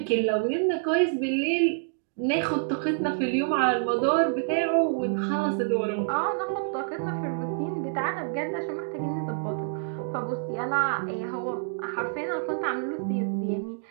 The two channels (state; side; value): silent; left; digital silence